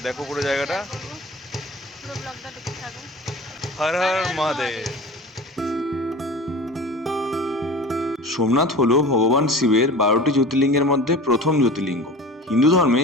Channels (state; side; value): normal; both; correlation 0.37